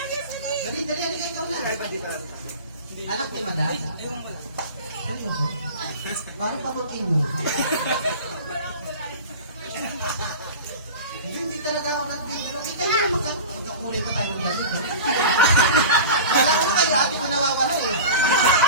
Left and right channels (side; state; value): both; inverted; correlation -0.33